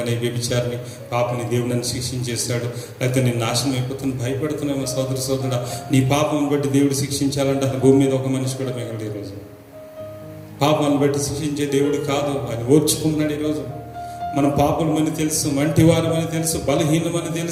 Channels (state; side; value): identical; both; correlation 1.00